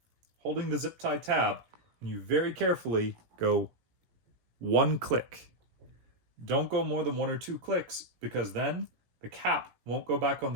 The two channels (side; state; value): left; late; 17 ms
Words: holding the zip tie tab, and you very carefully go one click. Don't go more than 1 or 2 clicks because then the cap won't go back on